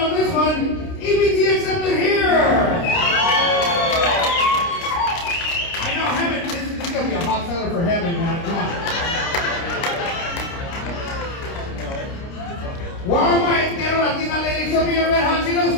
this one. EBT accepted here. I know Hemet, this is gonna be a hot seller for Hemet, man. Come on. Why my ghetto Latina ladies, show me your red hot Cheetos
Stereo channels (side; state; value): right; late; 29 ms